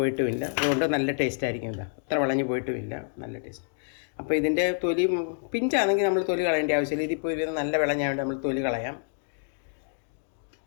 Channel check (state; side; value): silent; right; digital silence